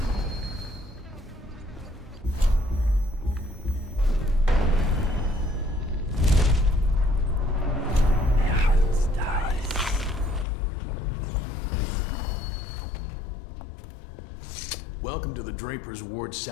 Welcome to the Draper's Ward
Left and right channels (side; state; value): right; drops out; at 10.5 s